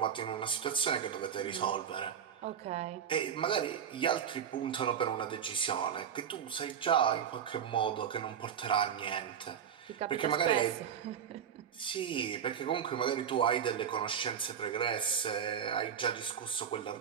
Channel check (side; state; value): left; quieter; 8.3 dB